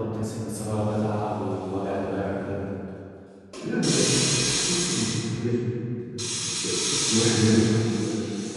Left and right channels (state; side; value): identical; both; correlation 1.00